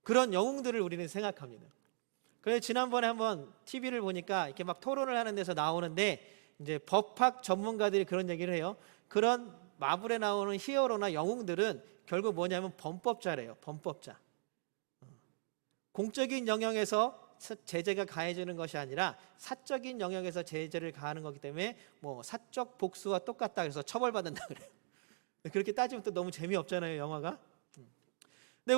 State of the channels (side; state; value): left; silent; digital silence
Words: 그런 영웅들을 우리는 생각합니다. 그래서 지난번에 한번 TV를 보니까 이렇게 막 토론을 하는 데서 나오는데 이제 법학 전문가들이 그런 얘기를 해요. 그런 마블에 나오는 히어로나 영웅들은 결국 뭐냐면 범법자래요. 범법자. 공적인 영역에서 제재가 가해지는 것이 아니라 사적인 영역에서 제재를 가하는 거기 때문에 뭐 사적 복수와 똑같다 해서 처벌받는다 그래요. 그렇게 따지면 또 너무 재미없잖아요, 영화가. 근데